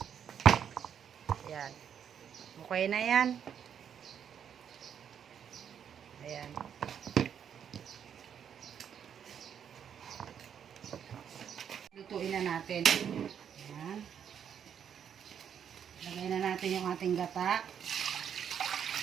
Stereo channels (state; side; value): quieter; left; 8.4 dB